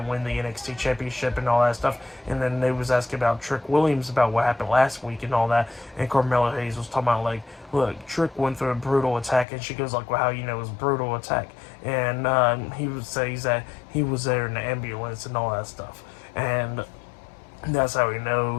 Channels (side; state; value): right; drops out; at 9.5 s